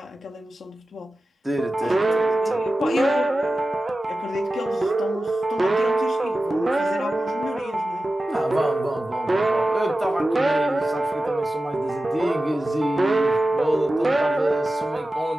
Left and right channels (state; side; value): normal; both; correlation 0.94